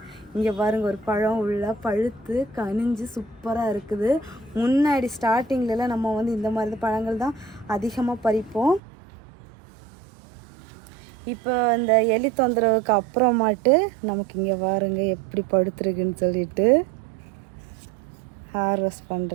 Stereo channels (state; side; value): drops out; left; at 8.8 s